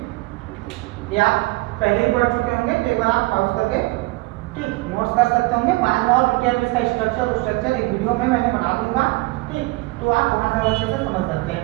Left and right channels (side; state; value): left; quieter; 22.6 dB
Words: ये आप पहले ही पढ़ चुके होंगे, तो एक बार आप पॉज करके ठीक नोट्स कर सकते होंगे। बाद में और डिटेल इसका स्ट्रक्चर एक वीडियो में मैंने बना दूंगा। ठीक, तो आप वहां से अच्छे से समझ सकते हैं।